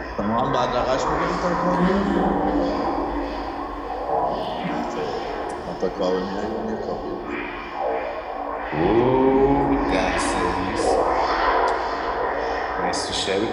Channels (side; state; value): both; identical; correlation 1.00